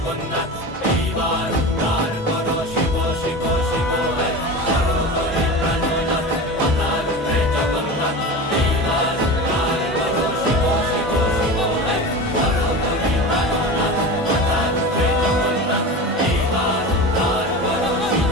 এইবার উদ্ধার করো শিব শিব শিব করো করে প্রাণনাথ। মাথার উপরে জগন্নাথ এইবার উদ্ধার করো শিব শিব শিব করো করে প্রাণনাথ। মাথার উপরে জগন্নাথ এইবার উদ্ধার করো শিব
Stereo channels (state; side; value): normal; both; correlation 0.29